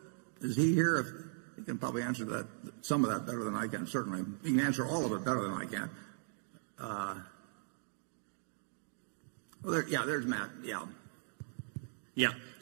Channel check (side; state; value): left; silent; digital silence